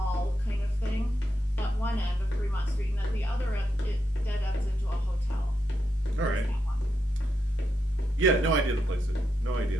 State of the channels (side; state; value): both; normal; correlation 0.84